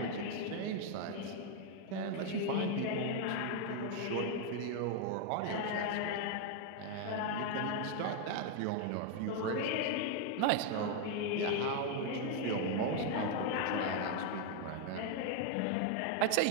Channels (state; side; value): different; both; correlation 0.01